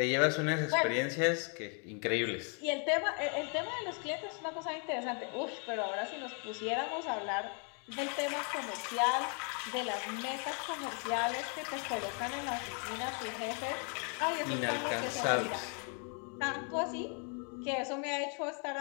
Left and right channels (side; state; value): right; quieter; 39.5 dB